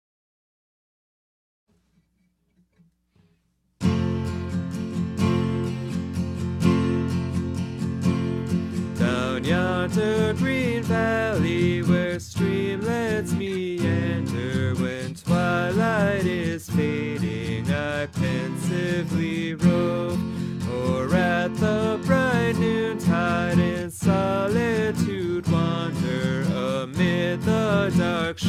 Down yonder green valley where streamlets meander, when twilight is fading, I pensively rove, or at the bright noontide in solitude wander, amid the dark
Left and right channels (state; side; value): identical; both; correlation 1.00